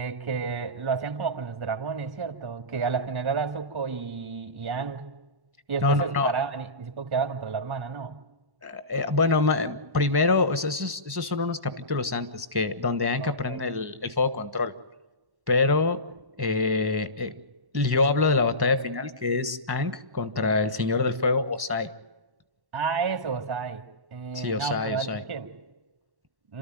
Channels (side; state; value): left; late; 1.1 ms